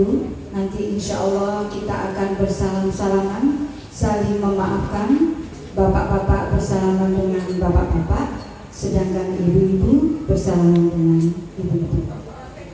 Nanti insya Allah kita akan bersalam-salaman, saling memaafkan. Bapak-bapak bersalaman dengan bapak-bapak, sedangkan ibu-ibu bersalaman dengan ibu-ibu.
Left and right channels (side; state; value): both; identical; correlation 1.00